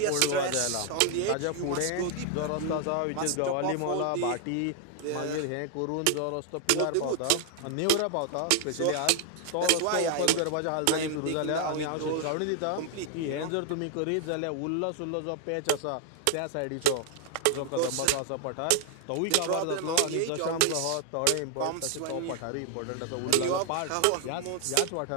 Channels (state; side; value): different; both; correlation 0.00